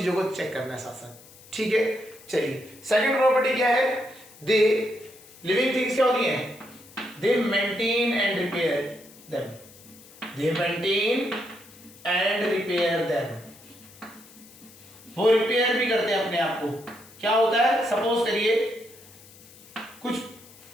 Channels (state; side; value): noise; left; hiss, 22 dB below the sound